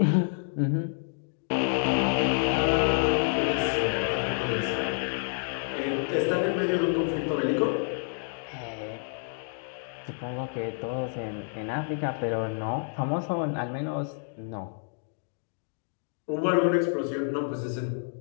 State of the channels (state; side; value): silent; right; 59 dB below the other